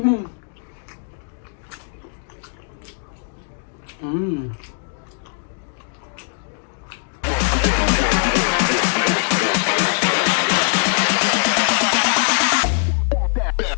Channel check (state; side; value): silent; right; 65 dB below the other